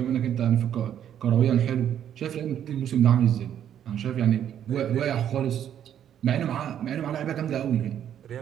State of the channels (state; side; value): quieter; left; 9.9 dB